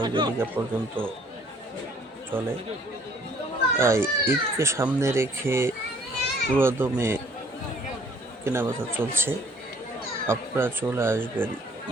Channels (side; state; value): both; normal; correlation 0.58